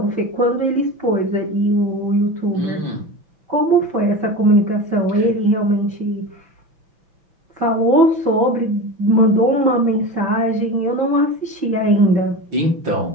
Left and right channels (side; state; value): left; late; 5.9 ms